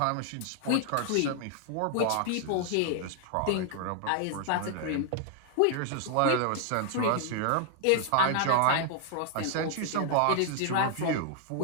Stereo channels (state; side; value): different; both; correlation 0.00